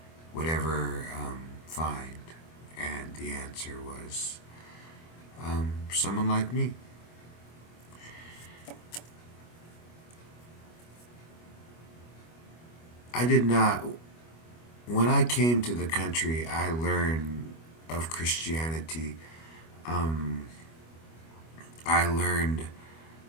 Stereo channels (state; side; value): late; right; 25 ms